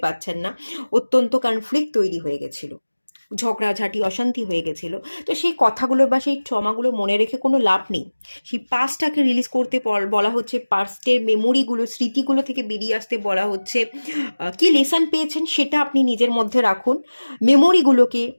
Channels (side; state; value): both; inverted; correlation -1.00